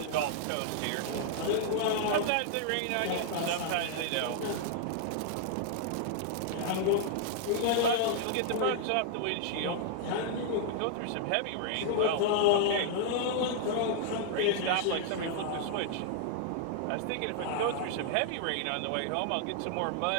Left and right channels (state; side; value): different; both; correlation -0.01